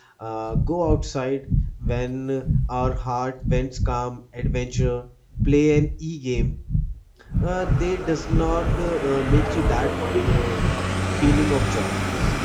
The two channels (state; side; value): identical; both; correlation 1.00